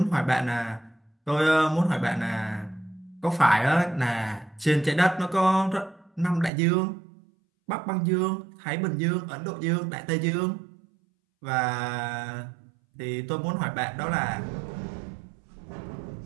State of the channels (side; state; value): left; drops out; at 6.5 s